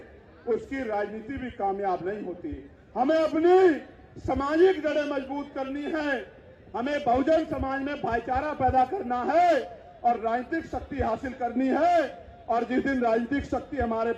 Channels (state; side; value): identical; both; correlation 1.00